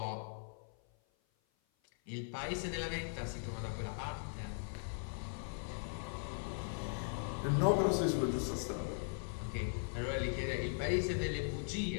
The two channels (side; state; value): right; silent; 52 dB below the other